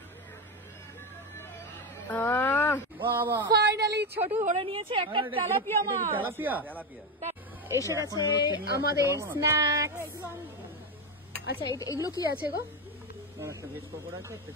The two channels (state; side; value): normal; both; correlation 0.13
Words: ফাইনালি ছোট ধরে নিয়েছে একটা তেলাপিয়া মাছ। এসে গেছে আমাদের স্ন্যাক্স। আচ্ছা এগুলো কি আছে গো? ভেজ পকোড়া আছে, একটা